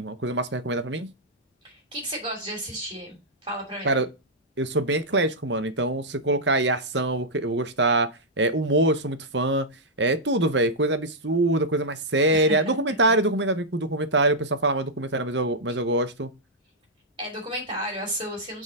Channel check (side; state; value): both; normal; correlation -0.08